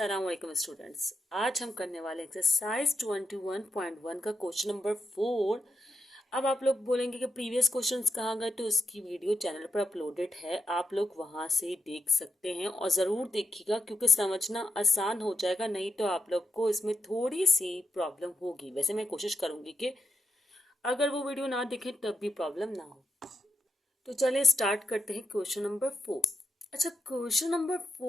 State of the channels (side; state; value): both; normal; correlation 0.86